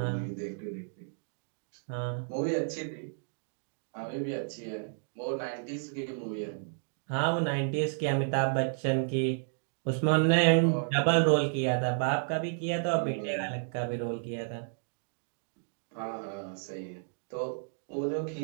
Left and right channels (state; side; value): silent; left; digital silence